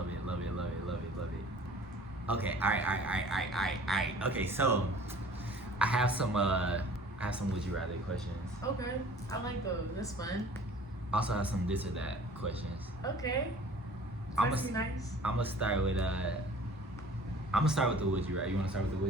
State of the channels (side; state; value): both; normal; correlation 0.48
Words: Okay, all right. Okay, so I have some would you rather questions. Okay, I like those. That's fun. Also have some this or that questions. Okay. I'm That's nice. gonna start with the would you rather. You wanna start with the